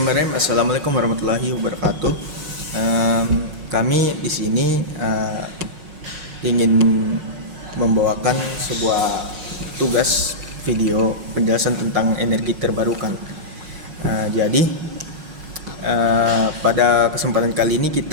Assalamualaikum warahmatullahi wabarakatuh. Kami di sini ingin membawakan sebuah tugas video penjelasan tentang energi terbarukan. Jadi pada kesempatan kali ini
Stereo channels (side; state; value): left; late; 5.5 ms